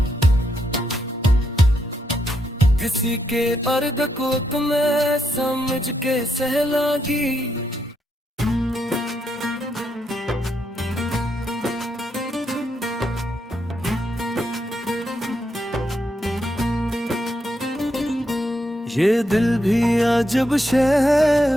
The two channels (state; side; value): normal; both; correlation 0.80